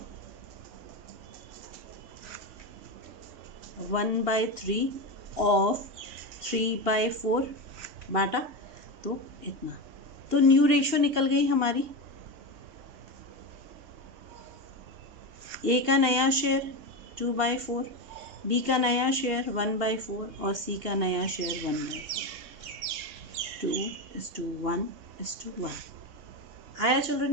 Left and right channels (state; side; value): late; left; 2.8 ms